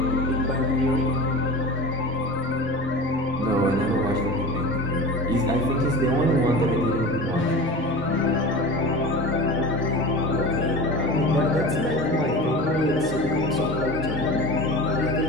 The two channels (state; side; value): normal; both; correlation 0.32